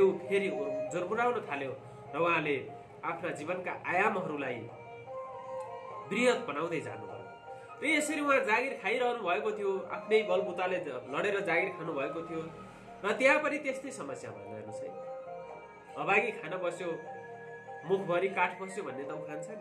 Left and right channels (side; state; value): both; identical; correlation 1.00